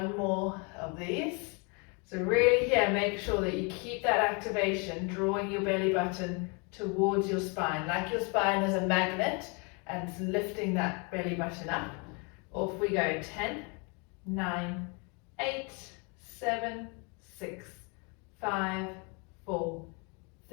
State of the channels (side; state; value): right; quieter; 32.9 dB